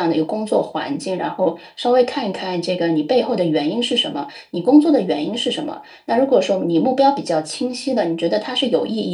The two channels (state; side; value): identical; both; correlation 1.00